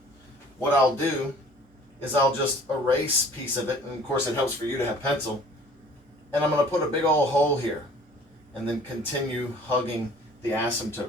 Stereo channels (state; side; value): normal; both; correlation 0.50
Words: what I'll do is I'll just erase a piece of it, and of course it helps for you to have pencil, and I'm going to put a big old hole here and then continue hugging the